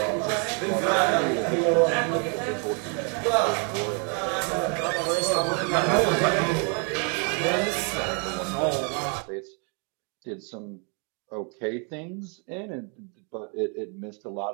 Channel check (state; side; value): quieter; left; 37.9 dB